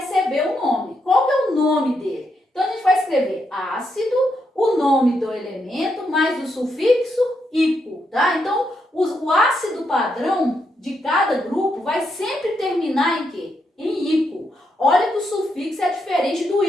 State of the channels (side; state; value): both; normal; correlation 0.80